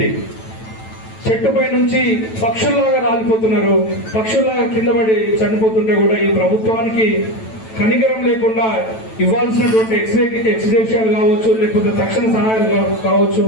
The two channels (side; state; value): right; late; 9.1 ms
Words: చెట్టుపై నుంచి పక్షుల్లాగా రాలిపోతున్నారు, పక్షుల్లాగా కింద పడి చనిపోతుంటే కూడా ఈ ప్రభుత్వానికి కనికరం లేకుండా ఇవ్వాల్సినటువంటి ఎక్స్గ్రేషియాలు కావచ్చు, లేకపోతే తక్షణ సహాయాలు కావచ్చు,